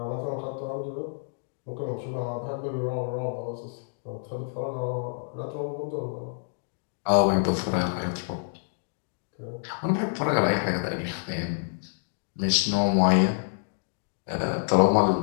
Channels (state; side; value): silent; right; digital silence